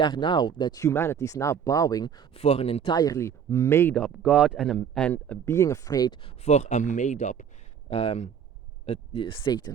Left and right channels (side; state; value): left; quieter; 7.9 dB